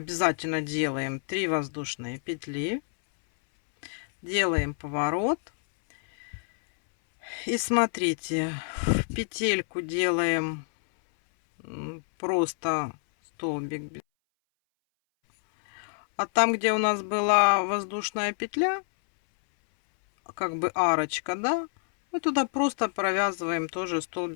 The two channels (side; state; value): right; silent; 60 dB below the other